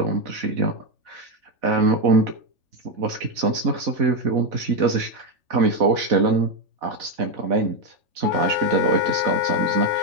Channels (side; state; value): left; late; 3.4 ms